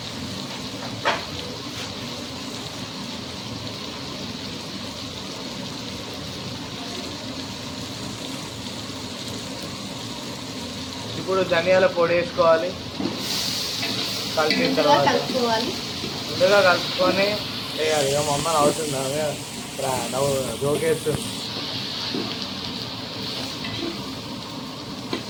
ఇప్పుడు ధనియాల పొడి వేసుకోవాలి. కలిపిన తర్వాత ముందుగా కలుపుకొని వేయాలి. ఇక మా అమ్మ అవుతుందా నవ్వు జోకేస్తుంది.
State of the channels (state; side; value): identical; both; correlation 1.00